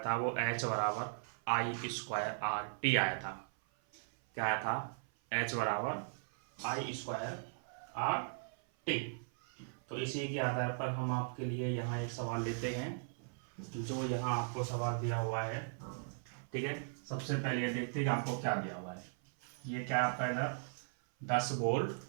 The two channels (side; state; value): left; silent; 52 dB below the other